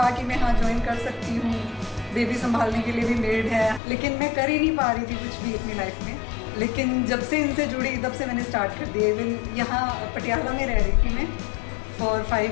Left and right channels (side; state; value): right; drops out; at 3.8 s